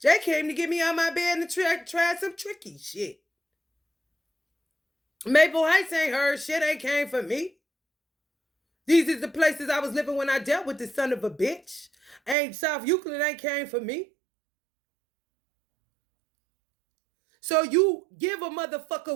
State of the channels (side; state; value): left; drops out; at 12.4 s